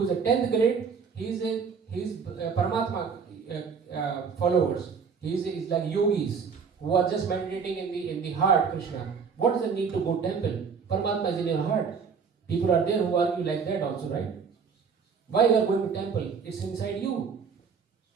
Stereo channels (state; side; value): quieter; left; 5.9 dB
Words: is a 10th grade, he's Paramatma followers. He's like yogis who are just meditating in the heart, Krishna. What is the need to go temple? Paramatma is in your heart. People are there who argue like that also, right? Why you are going to temple? It's inside you.